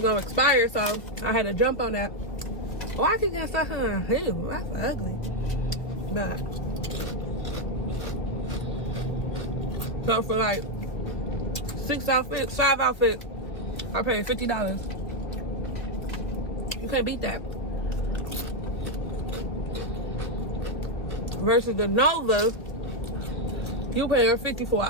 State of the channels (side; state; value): right; late; 2.0 ms